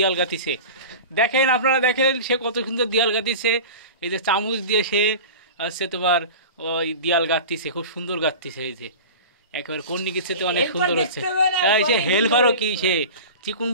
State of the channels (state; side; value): inverted; both; correlation -0.33